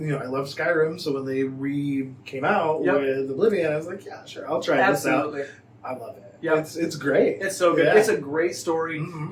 Skyrim, so when they came out with Oblivion, I was like, yeah, sure, I'll try this out. I love it. Yeah, it's great. It's so good. Yeah. It's a great story,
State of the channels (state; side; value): identical; both; correlation 1.00